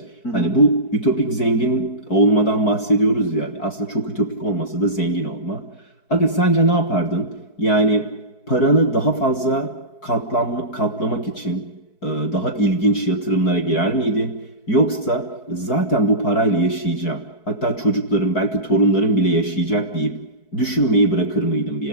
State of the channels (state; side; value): late; right; 4.6 ms